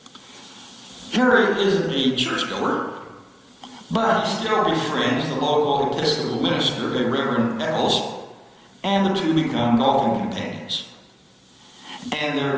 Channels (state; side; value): identical; both; correlation 1.00